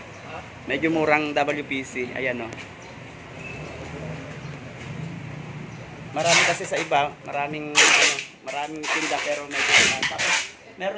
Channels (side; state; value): both; identical; correlation 1.00